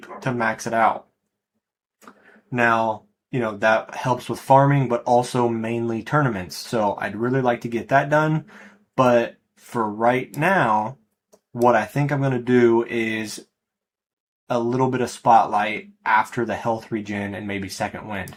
to max it out. Now, that helps with farming, but also mainly tournaments. So I'd really like to get that done. But for right now, what I think I'm going to do is a little bit of Spotlight after the health regen and maybe second wind.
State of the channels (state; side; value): identical; both; correlation 1.00